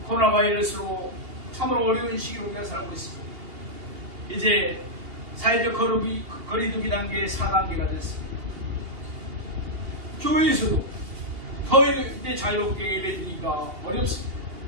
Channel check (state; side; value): late; left; 2.8 ms